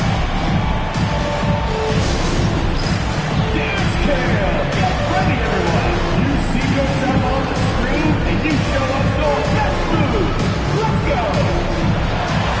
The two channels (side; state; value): both; identical; correlation 1.00